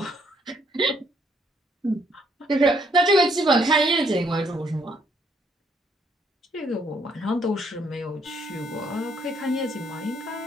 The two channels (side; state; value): both; normal; correlation 0.69